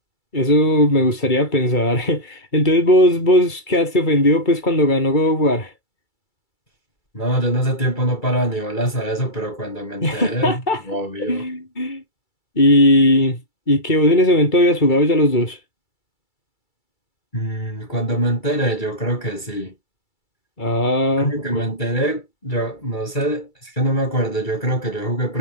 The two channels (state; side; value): late; right; 2.3 ms